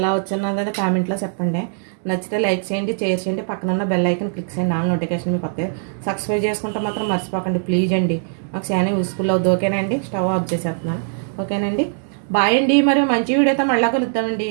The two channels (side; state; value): left; silent; digital silence